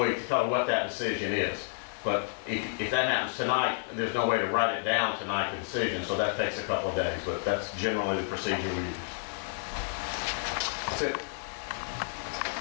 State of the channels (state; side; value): silent; right; 58 dB below the other